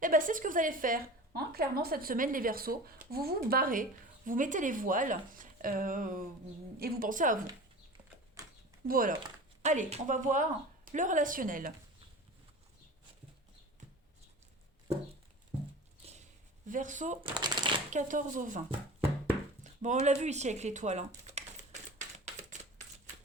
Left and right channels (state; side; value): normal; both; correlation 0.36